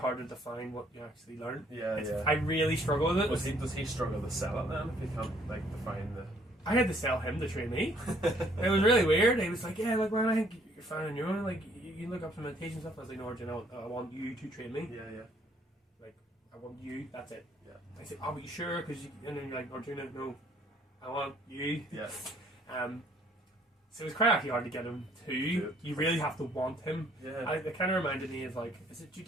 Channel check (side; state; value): both; normal; correlation 0.63